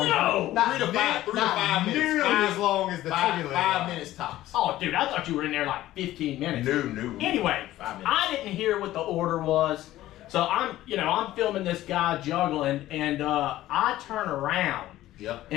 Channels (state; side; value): quieter; right; 14.9 dB